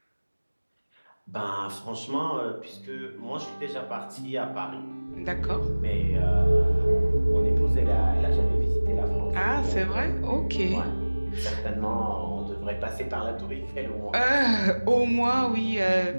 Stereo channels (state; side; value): inverted; both; correlation -1.00